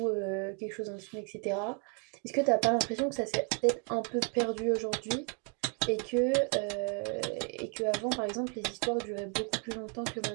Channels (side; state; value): left; quieter; 38.7 dB